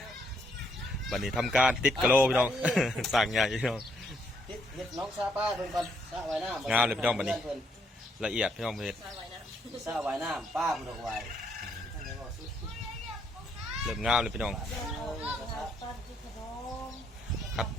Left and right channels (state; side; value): normal; both; correlation 0.72